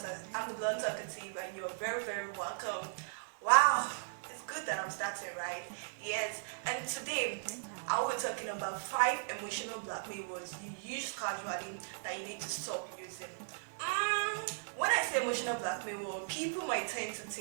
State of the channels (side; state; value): left; silent; digital silence